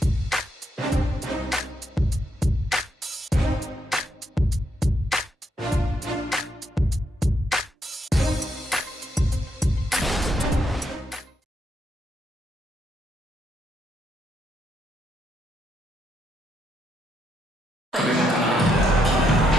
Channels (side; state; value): both; normal; correlation 0.78